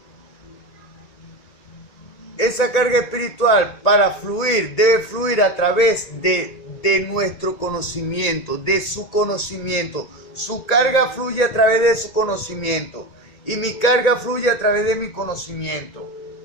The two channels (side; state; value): right; late; 2.2 ms